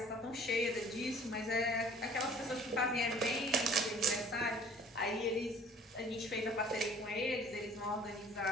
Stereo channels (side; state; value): both; normal; correlation 0.51